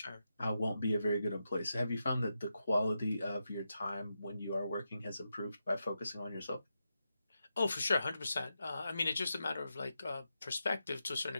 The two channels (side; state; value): both; inverted; correlation -0.87